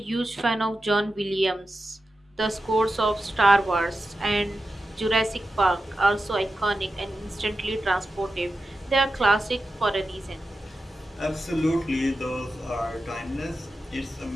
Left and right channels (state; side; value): normal; both; correlation 0.91